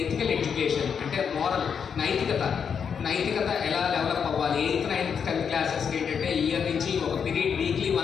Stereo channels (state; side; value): quieter; right; 6.9 dB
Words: ఎథికల్ ఎడ్యుకేషన్ అంటే మోరల్ నైతికత ఎలా డెవలప్ అవ్వాలి, 8th 9th 10th క్లాసెస్కి ఏంటంటే ఇయర్ నుంచి ఒక పీరియడ్ వీక్లీ